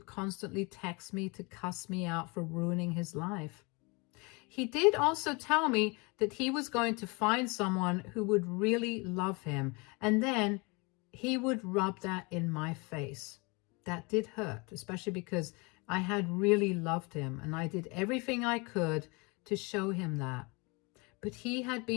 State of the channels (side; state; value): right; quieter; 28.6 dB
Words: constantly text me to cuss me out for ruining his life. He did also tell me that he was going to find someone who would really love him, and then he would rub that in my face. That did hurt, especially because I had really loved him, and I did everything I could to show him that. But he had